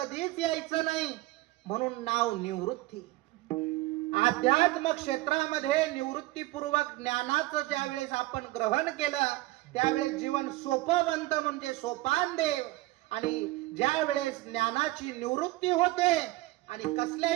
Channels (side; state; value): left; quieter; 19.4 dB